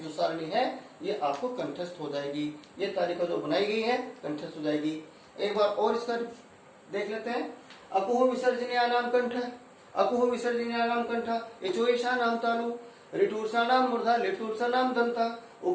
जो सारणी है ये आपको कंठस्थ हो जाएगी। ये तालिका जो बनाई गई है कंठस्थ हो जाएगी। एक बार और इसका देख लेते हैं। अकुह विसर्जनीय नाम कंठ, अकुह विसर्जनीय नाम कंठ, इचोईशा नाम तालु, ऋटूर्षा नाम मूर्धा, लिटूर्षा नाम दंता,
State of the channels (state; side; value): identical; both; correlation 1.00